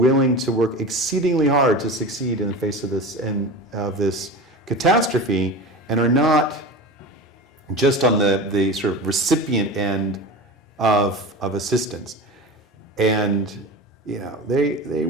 to work exceedingly hard to succeed in the face of this catastrophe, and are not just on the sort of recipient end of assistance. And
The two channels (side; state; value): both; normal; correlation 0.30